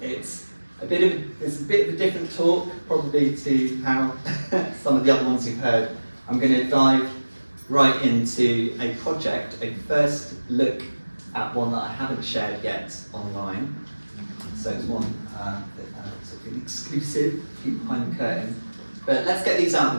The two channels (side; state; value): both; inverted; correlation -1.00